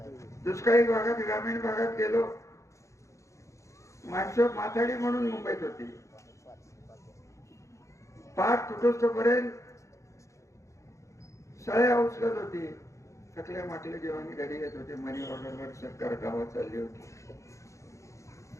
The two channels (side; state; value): right; late; 0.15 ms